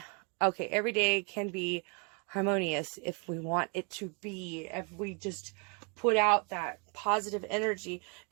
can be harmonious if we want it to be. If we just put out that positive energy,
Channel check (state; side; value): quieter; left; 34.6 dB